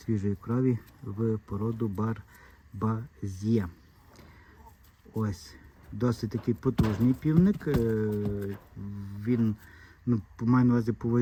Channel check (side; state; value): both; identical; correlation 1.00